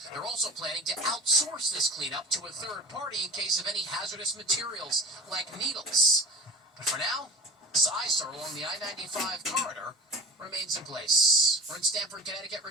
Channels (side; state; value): both; normal; correlation 0.35